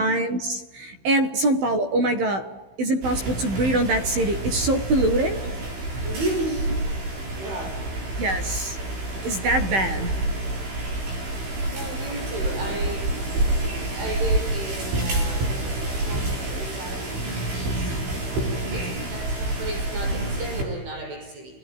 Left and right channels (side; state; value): left; late; 16 ms